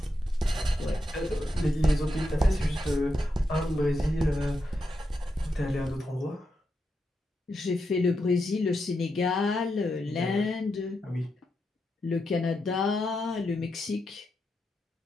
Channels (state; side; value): normal; both; correlation 0.85